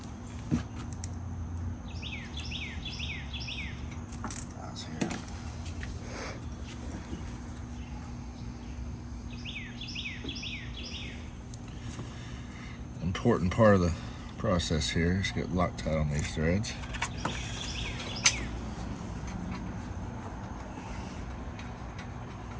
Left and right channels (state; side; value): identical; both; correlation 1.00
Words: Important part of the process here is get Loctite on these threads.